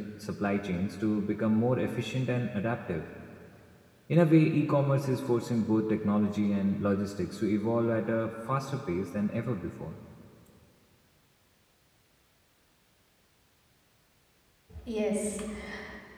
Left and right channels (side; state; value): both; identical; correlation 1.00